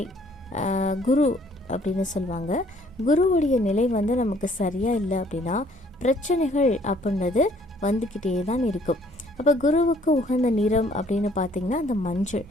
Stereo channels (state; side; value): normal; both; correlation 0.61